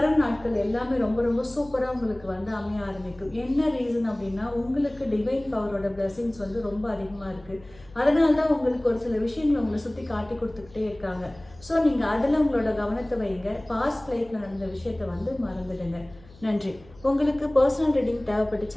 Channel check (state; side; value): noise; left; hum, 24 dB below the sound